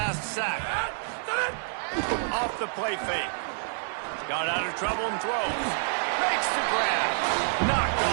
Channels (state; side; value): silent; left; 57 dB below the other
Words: sack. Off the play fake. Got out of trouble and throws. Makes the grab. Knocked